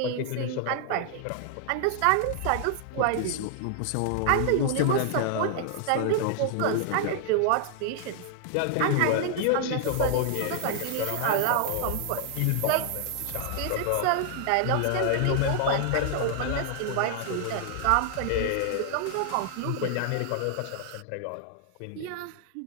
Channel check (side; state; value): both; different; correlation 0.00